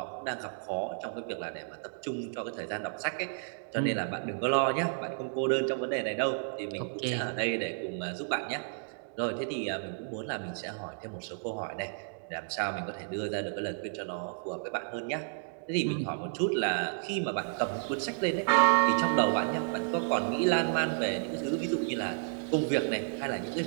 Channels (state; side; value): silent; left; digital silence